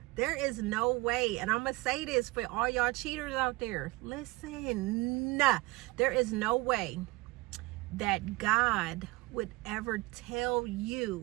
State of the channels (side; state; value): left; quieter; 22.3 dB